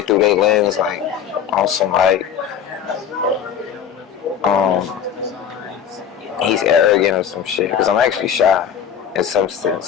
through their lens, like on some like, he's arrogant or some shit. Because I'm actually shy. In some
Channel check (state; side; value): quieter; right; 8.3 dB